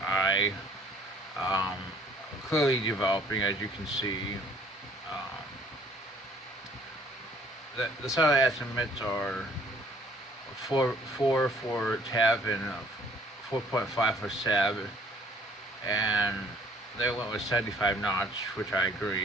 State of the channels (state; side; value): normal; both; correlation 0.58